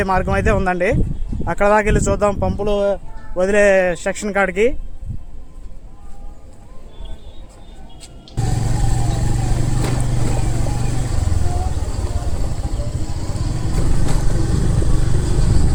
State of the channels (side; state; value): both; identical; correlation 1.00